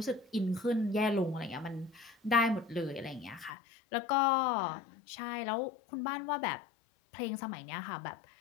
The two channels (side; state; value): right; drops out; at 3.5 s